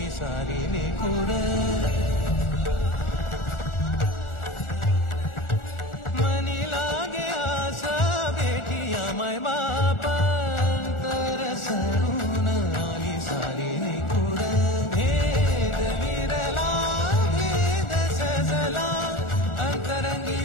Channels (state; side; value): late; right; 1.4 ms